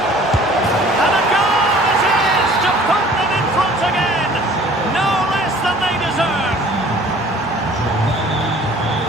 And a goal it is to put them in front again. No less than they deserve.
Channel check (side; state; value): both; normal; correlation 0.51